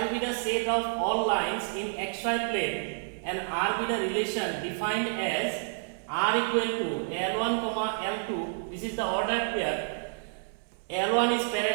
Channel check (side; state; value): left; silent; 58 dB below the other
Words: be the set of all lines in xy plane and R be the relation defined as R equal to L1 comma L2. This is the ordered pair. L1 is